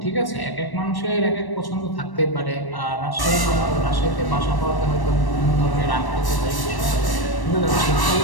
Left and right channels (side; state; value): right; late; 1.1 ms